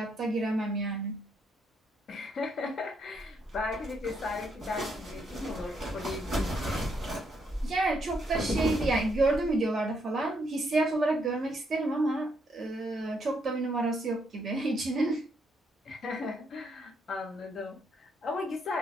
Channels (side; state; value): both; normal; correlation 0.75